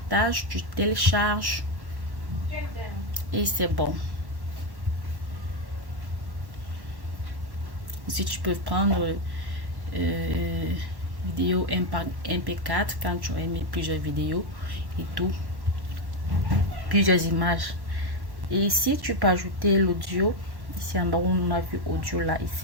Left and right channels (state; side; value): late; left; 1.1 ms